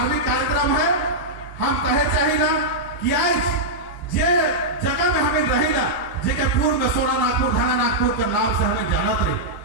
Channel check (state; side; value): normal; both; correlation -0.08